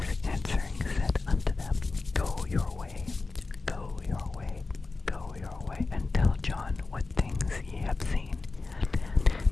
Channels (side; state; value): right; quieter; 3.7 dB